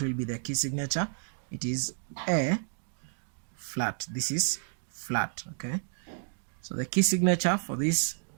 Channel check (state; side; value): silent; left; digital silence